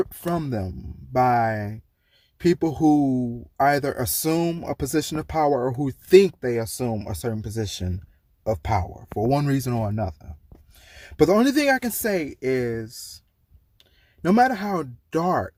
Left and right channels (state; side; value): identical; both; correlation 1.00